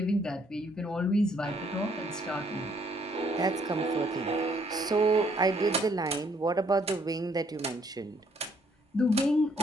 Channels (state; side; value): normal; both; correlation 0.67